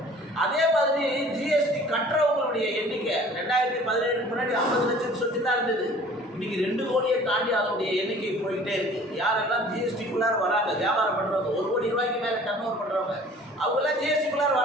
அதே மாதிரி ஜிஎஸ்டி கட்டுறவங்களுடைய எண்ணிக்கை 2017 முன்னாடி 50 லட்சம் சொத்து தான் இருந்தது. இன்னைக்கு 2 கோடியை தாண்டி அதனுடைய எண்ணிக்கை போய்கிட்டே இருக்கு. யாரெல்லாம் ஜிஎஸ்டிக்குள்ளார வராங்க, வியாபாரம் பண்றவங்க, 1 கோடி ரூபாய்க்கு மேல டர்ன் ஓவர் பண்றவங்க, அவங்க எல்லாம் ஜிஎஸ்டிக்குள்ளார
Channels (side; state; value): both; normal; correlation 0.49